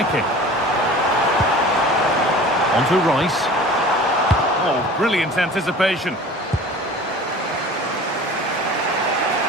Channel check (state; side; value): normal; both; correlation 0.41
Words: On to Rice. Oh, brilliant anticipation.